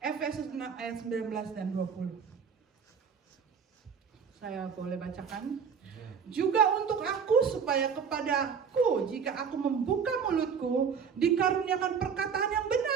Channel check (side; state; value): left; quieter; 6.6 dB